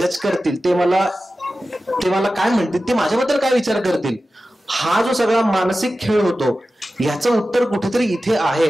करतील, ते मला काय म्हणतील, ते माझ्याबद्दल काय विचार करतील, हा जो सगळा मानसिक खेळ होतो ह्याचं उत्तर कुठेतरी इथे आहे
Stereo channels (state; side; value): normal; both; correlation 0.94